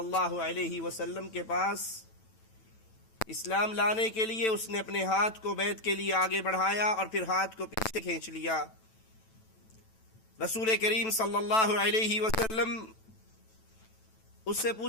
علیہ وسلم کے پاس اسلام لانے کے لیے. اس نے اپنے ہاتھ کو بیعت کے لیے آگے بڑھایا اور پھر ہاتھ کو پیچھے کھینچ لیا. رسول کریم صلی اللہ علیہ وسلم اس سے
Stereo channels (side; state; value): right; late; 9.1 ms